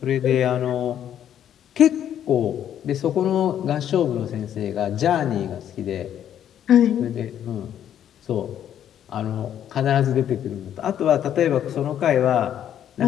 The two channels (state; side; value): quieter; right; 10.2 dB